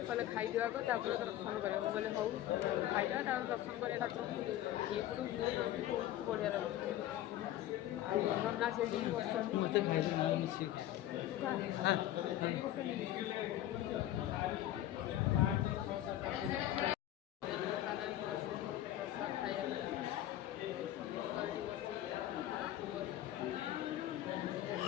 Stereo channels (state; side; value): quieter; right; 13.3 dB